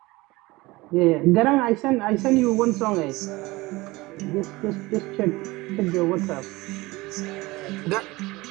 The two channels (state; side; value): quieter; left; 21.2 dB